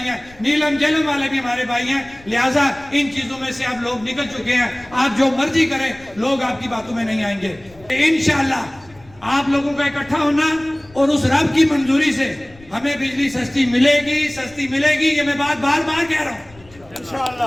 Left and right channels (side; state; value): left; noise; rumble, 25 dB below the sound